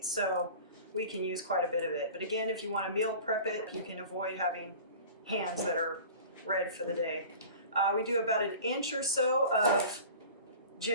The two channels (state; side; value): inverted; both; correlation -0.40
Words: so we can use quite a bit of it. But again, if you want to meal prep it, you can avoid having hands that are red for the day. We do about 1 inch or so of